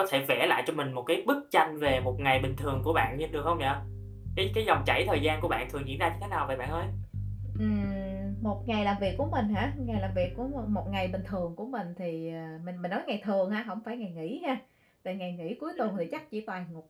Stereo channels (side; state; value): both; identical; correlation 1.00